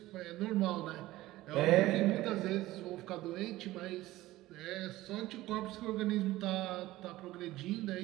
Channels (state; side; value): quieter; left; 16.9 dB